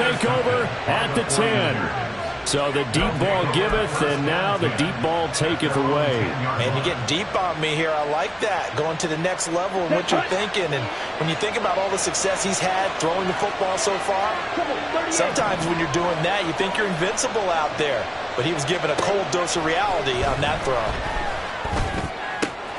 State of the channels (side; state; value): both; identical; correlation 1.00